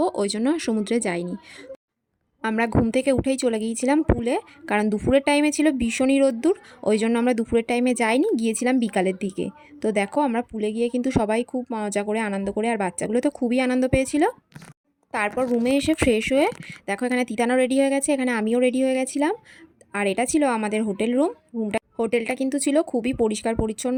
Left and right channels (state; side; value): identical; both; correlation 1.00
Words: ওই জন্য সমুদ্রে যাইনি। আমরা ঘুম থেকে উঠেই চলে গিয়েছিলাম পুলে, কারণ দুপুরের টাইমে ছিল ভীষণই রোদ্দুর, ওই জন্য আমরা দুপুরের টাইমে যাইনি, গিয়েছিলাম বিকালের দিকে। তো দেখো আমরা পুলে গিয়ে কিন্তু সবাই খুব মজা করে আনন্দ করে, আর বাচ্চাগুলো তো খুবই আনন্দ পেয়েছিল। তারপর রুমে এসে ফ্রেশ হয়ে দেখো এখানে তিতানো রেডি হয়ে গেছে, এখানে আমিও রেডি হয়ে গেছিলাম। আর এটা ছিল আমাদের হোটেল হোটেলটা কিন্তু ছিল খুবই পরিষ্কার